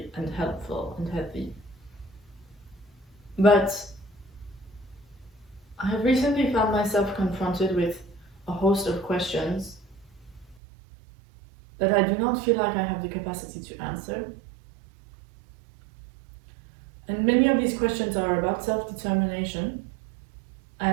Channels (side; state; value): left; drops out; at 10.6 s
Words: and helpful and healthy. But I have recently found myself confronted with a host of questions that I do not feel like I have the capacity to answer. And many of these questions are about self-determination